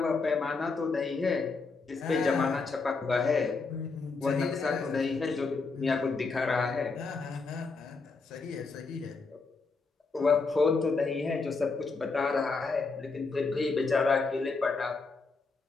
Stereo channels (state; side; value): quieter; right; 4.2 dB